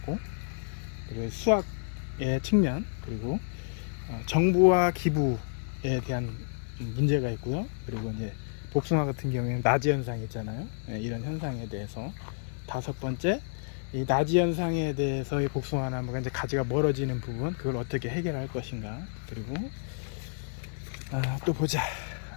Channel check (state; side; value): silent; right; digital silence